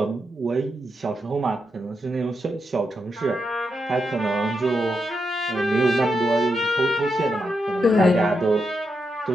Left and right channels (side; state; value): both; normal; correlation 0.85